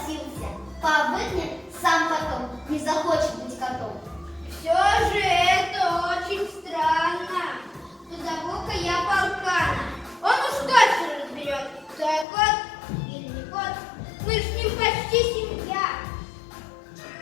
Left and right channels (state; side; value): drops out; right; at 12.2 s